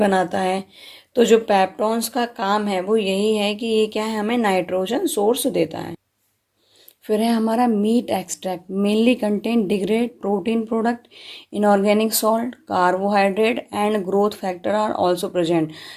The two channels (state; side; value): identical; both; correlation 1.00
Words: है। तो जो पेप्टॉन्स का काम है वो यही है कि ये क्या है, हमें नाइट्रोजन सोर्स देता है। फिर है हमारा meat extract, mainly contain degrade protein product, inorganic salt, carbohydrate and growth factor are also present.